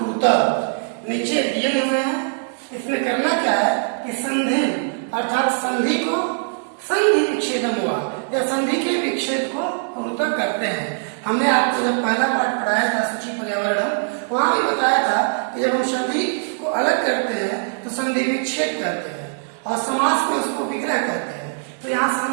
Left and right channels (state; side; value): silent; left; digital silence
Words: नीचे दिए हुए हैं, इसमें करना क्या है कि संधि अर्थात संधि विच्छेदम हुआ या संधि के विच्छेद को कुरुत करते हैं। हमने आपको जब पहला पाठ पढ़ाया था सूची पर्यावरण, वहां भी बताया था कि जब हम संधि को अलग करते हैं तो संधि विच्छेद करते हैं और समास में उसको विग्रह करते हैं। तो यहाँ